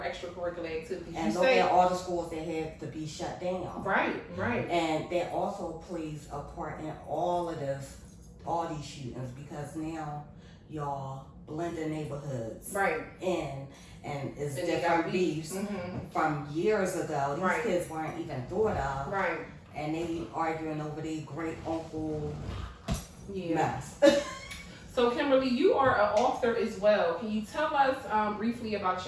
extracurricular activities. And look at all the schools that have to be shut down. Right. And that also plays a part in all these shootings, because now y'all blend the neighborhoods in, and it's different beefs from years ago. These kids weren't even thought of. Right. And they arguing over their great uncle mess. So Kimberly, you are an author as well. Can you tell us briefly about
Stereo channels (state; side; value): identical; both; correlation 1.00